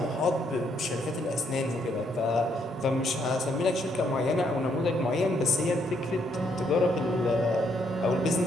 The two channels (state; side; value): normal; both; correlation 0.72